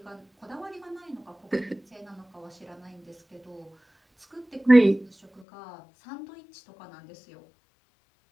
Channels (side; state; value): right; drops out; at 5.5 s